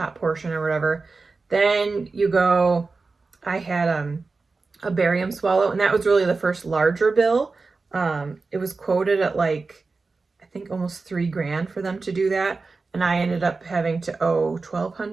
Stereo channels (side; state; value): left; quieter; 4.0 dB